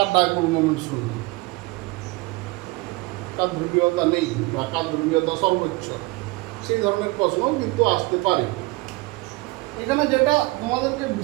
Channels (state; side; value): quieter; left; 22.9 dB